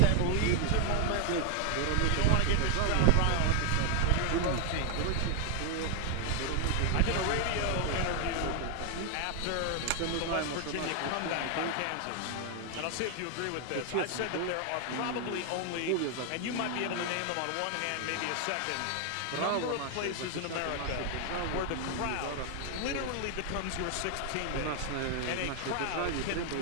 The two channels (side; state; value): both; different; correlation 0.00